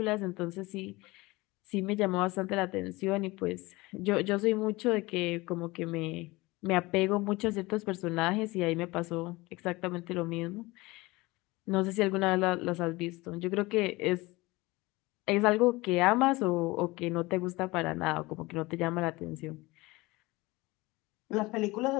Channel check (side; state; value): right; quieter; 21.9 dB